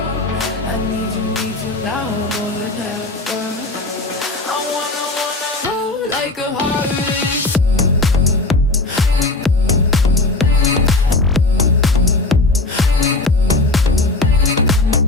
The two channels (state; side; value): quieter; right; 3.1 dB